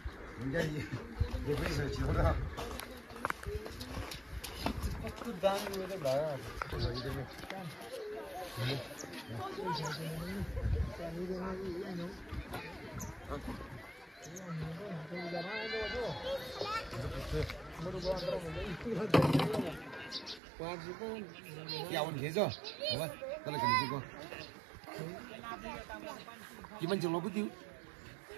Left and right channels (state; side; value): drops out; left; at 20.4 s